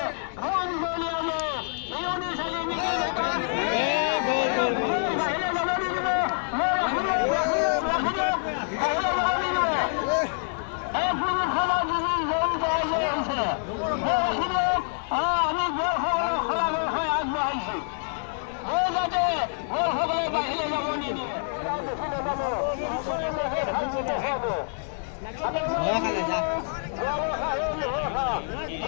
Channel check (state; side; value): silent; right; digital silence